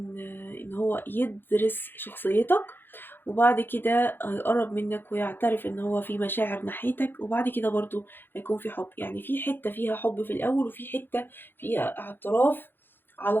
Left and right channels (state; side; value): late; right; 0.099 ms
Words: ان هو يدرس شخصيتك، وبعد كده هيقرب منك ويعترف ان هو في مشاعر ناحيتك، وبعد كده برضو هيكون في حب. يعني في حتة فيها حب في الاول، وفي حتة فيها اعتراف